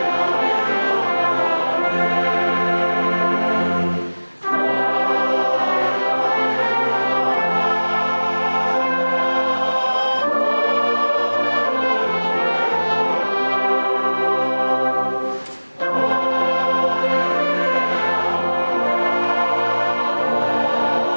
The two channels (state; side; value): inverted; both; correlation -1.00